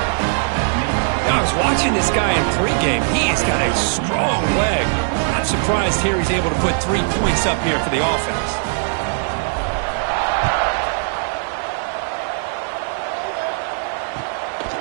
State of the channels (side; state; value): left; silent; 66 dB below the other